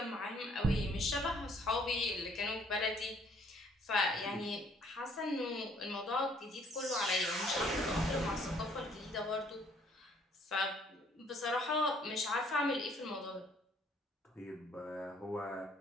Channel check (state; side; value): normal; both; correlation 0.63